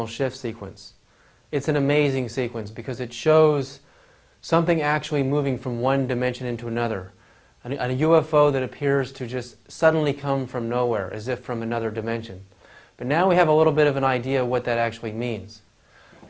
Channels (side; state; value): both; identical; correlation 1.00